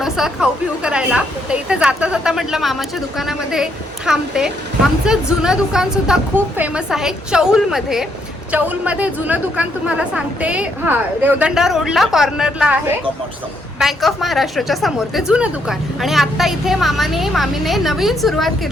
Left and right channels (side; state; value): both; normal; correlation 0.74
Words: खाऊ पिऊ करायला, तर इथे जाता जाता म्हटलं मामाच्या दुकानामध्ये थांबते. आमचं जुनं दुकान सुद्धा खूप फेमस आहे चौलमध्ये. चौलमध्ये जुनं दुकान तुम्हाला सांगते, हा रेवदंडा रोडला कॉर्नरला आहे, बँक ऑफ महाराष्ट्राच्या समोर ते जुनं दुकान. आणि आता इथे मामीने नवीन सुरुवात